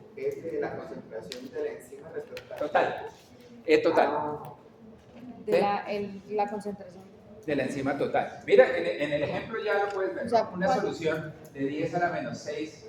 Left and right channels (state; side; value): identical; both; correlation 1.00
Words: es la concentración de la enzima respecto a Total. La concentración. De la enzima total. Mira, en el ejemplo ya lo puedes ver. O sea, Una solución de 10 a la menos